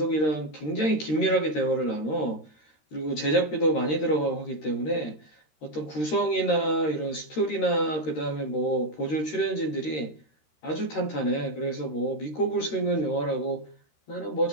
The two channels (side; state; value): right; late; 13 ms